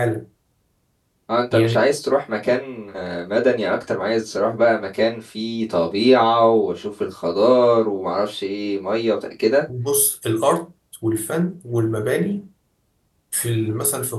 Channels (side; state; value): both; identical; correlation 1.00